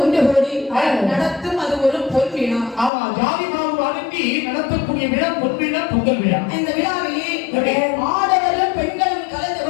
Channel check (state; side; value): drops out; right; at 2.9 s